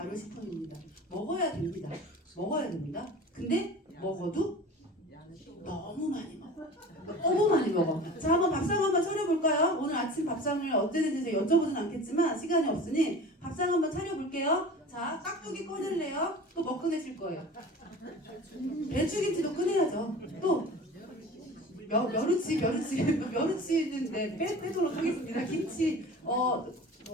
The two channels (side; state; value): both; normal; correlation 0.38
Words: 먹어야 됩니다. 먹어야 됩니다. 근데 먹어도 너무 많이 먹어. 너무 많이 먹어. 자, 한번 밥상 한번 차려볼까요? 오늘 아침 밥상을 어땠는지 여쭤보진 않겠지만 시간이 없으니 밥상 한번 차려볼게요. 자, 깍두기 꺼낼래요? 또 뭐 꺼내실 거예요? 배추김치도 꺼내야죠. 또 멸치는 빼도록 하겠습니다. 김치,